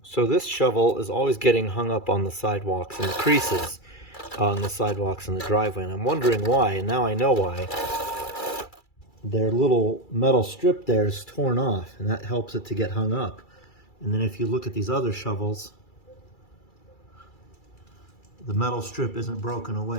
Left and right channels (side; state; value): right; late; 2.3 ms